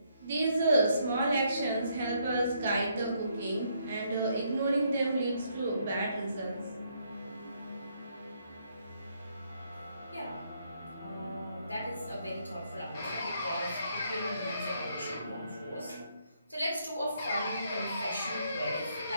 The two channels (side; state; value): both; inverted; correlation -0.73